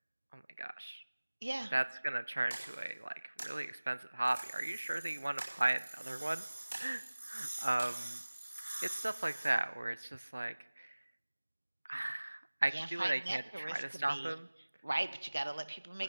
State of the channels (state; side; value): inverted; both; correlation -1.00